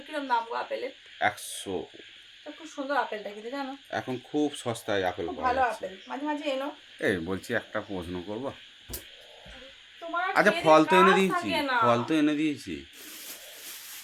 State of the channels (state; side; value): identical; both; correlation 1.00